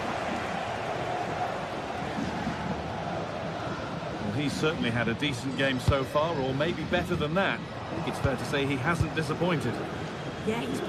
He's certainly had a decent game so far, or maybe better than that. I think it's fair to say he hasn't disappointed. Yeah, he's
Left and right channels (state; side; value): identical; both; correlation 1.00